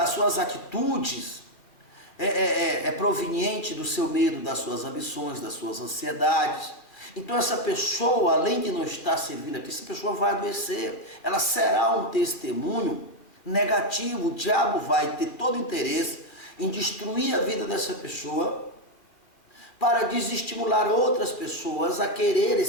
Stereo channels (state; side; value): late; right; 2.3 ms